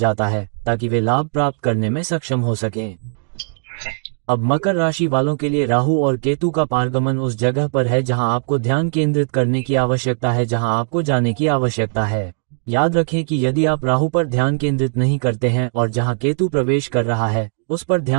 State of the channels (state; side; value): silent; left; digital silence